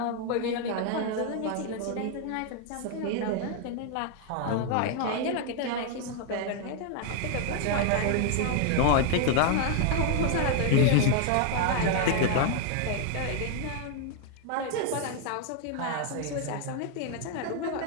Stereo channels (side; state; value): both; different; correlation 0.00